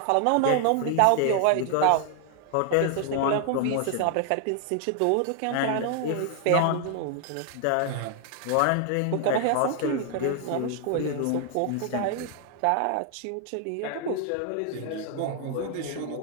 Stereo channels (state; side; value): different; both; correlation 0.00